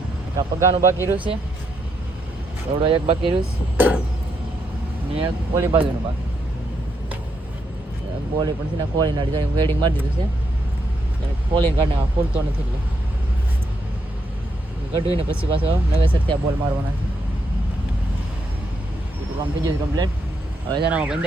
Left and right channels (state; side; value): normal; both; correlation 0.79